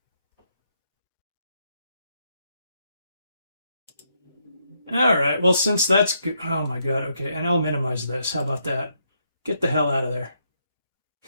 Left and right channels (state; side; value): inverted; both; correlation -0.77